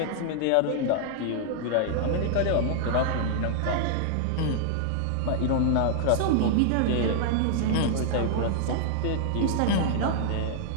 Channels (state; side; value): different; both; correlation -0.01